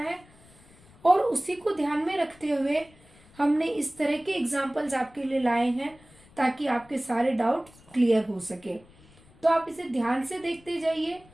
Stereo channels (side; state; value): left; noise; rumble, 26 dB below the sound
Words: और उसी को ध्यान में रखते हुए हमने इस तरह के एग्जाम्पल्स आपके लिए लाए हैं ताकि आपके सारे डाउट क्लियर हो सके। तो आप इसे ध्यान से देखते जाइए